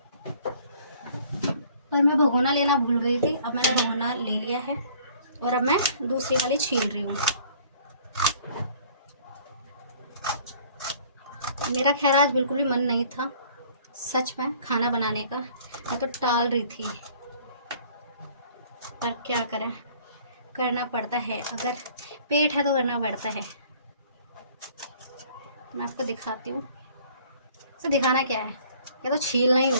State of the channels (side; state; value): both; inverted; correlation -0.55